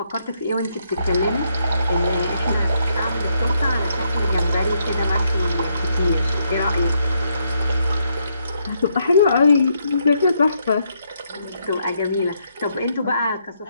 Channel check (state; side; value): inverted; both; correlation -0.76